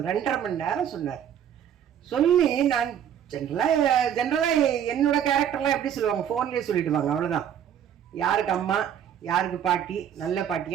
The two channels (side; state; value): left; quieter; 9.4 dB